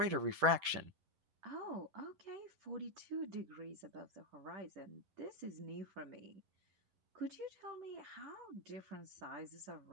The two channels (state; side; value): late; left; 11 ms